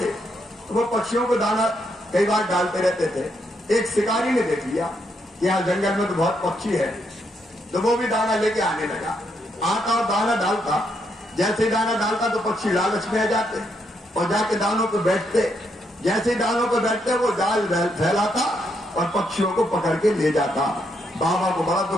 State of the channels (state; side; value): normal; both; correlation 0.77